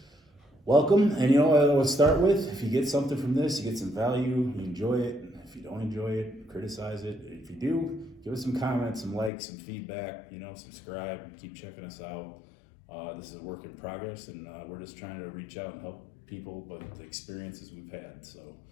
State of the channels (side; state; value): right; drops out; at 9.3 s